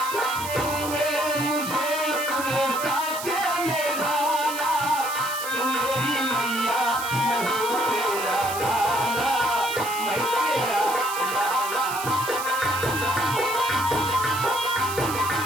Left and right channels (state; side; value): noise; right; hiss, 8 dB below the sound